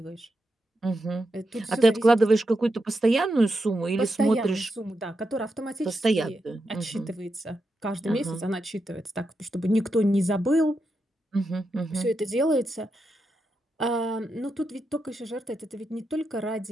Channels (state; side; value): normal; both; correlation 0.86